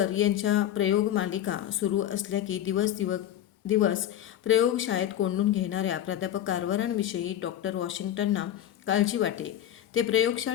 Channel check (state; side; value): quieter; right; 11.4 dB